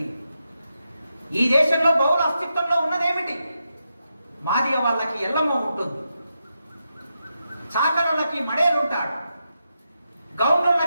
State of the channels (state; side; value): inverted; both; correlation -0.86